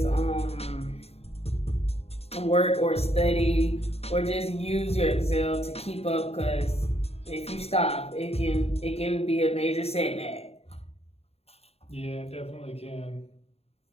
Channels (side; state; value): right; late; 0.29 ms